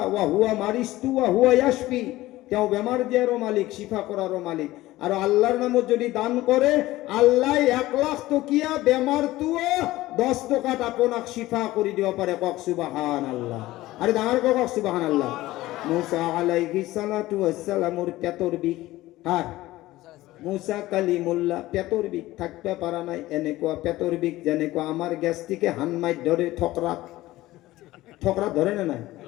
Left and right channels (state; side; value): quieter; right; 17.1 dB